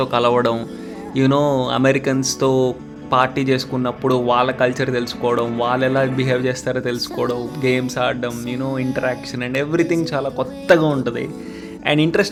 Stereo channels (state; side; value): identical; both; correlation 1.00